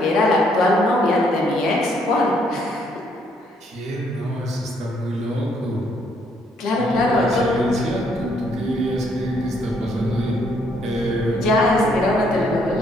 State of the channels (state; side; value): normal; both; correlation 0.69